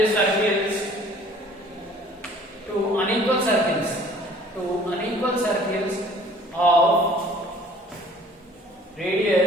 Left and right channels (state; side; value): normal; both; correlation 0.52